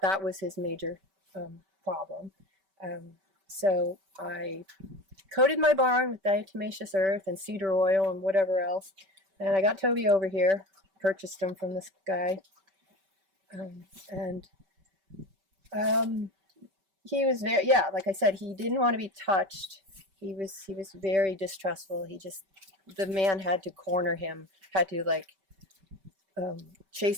was his major problem. So I coated my barn with diatomaceous earth and cedar oil and whatever else, and I got Toby over here, purchased him from this guy, and he was very, like I said, he didn't want to be touched. He was very distrustful. The man had to corner him, had to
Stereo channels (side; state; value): left; late; 5.2 ms